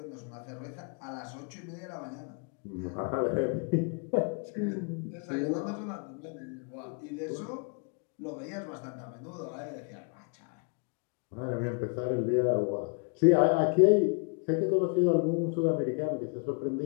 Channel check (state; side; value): quieter; right; 34.5 dB